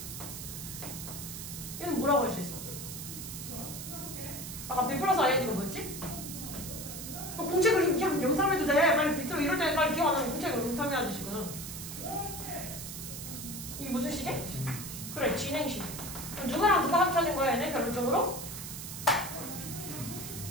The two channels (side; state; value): right; noise; hiss, 8 dB below the sound